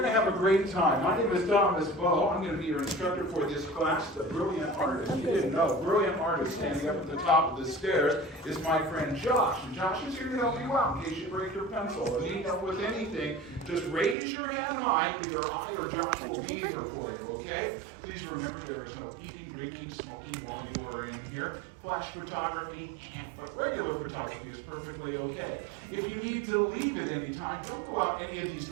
to have a great time. My name is Thomas Bowe. I'm going to be your instructor for this class. The brilliant artist, you didn't know, brilliant artist standing up at the top of the stairs is my friend Josh. And Josh is here to help you out in case you break your pencil or need help with anything. Just raise your hand high. Either I or Josh will be here for you, okay? Please remember there is no eating, drinking, smoking while you are in here. Flash photography, but regular photography is perfectly okay. If you need to leave at any time, don't go out any of these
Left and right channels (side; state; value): left; drops out; at 14.2 s